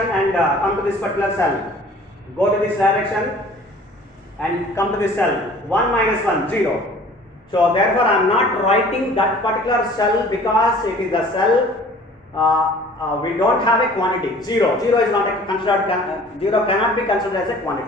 and come to this particular cell. Go to this direction and come to this cell. 1 minus 1, 0. So therefore I am not writing that particular cell because it is the cell we don't have a quantity. 0 is not considered, 0 cannot be considered as a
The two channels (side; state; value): both; normal; correlation 0.49